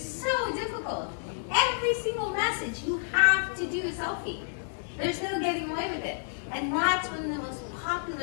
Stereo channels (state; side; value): silent; right; digital silence